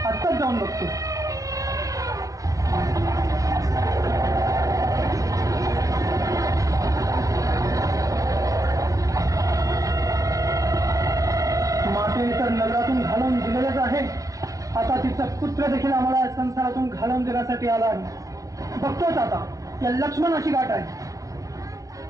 आत्ताच जाऊन बघतो. मातेने तर नगरातून घालवून दिलेलेच आहे, आता तिचा पुत्र देखील आम्हाला संसारातून घालवून देण्यासाठी आला आहे. बघतोच आता या लक्ष्मणाची गाठ आहे.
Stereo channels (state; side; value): late; left; 0.17 ms